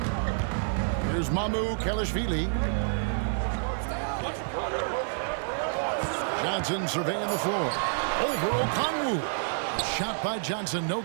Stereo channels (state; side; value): silent; left; digital silence